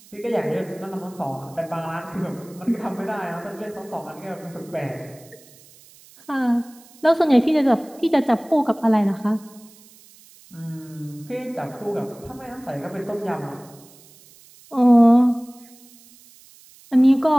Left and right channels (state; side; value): noise; right; hiss, 25 dB below the sound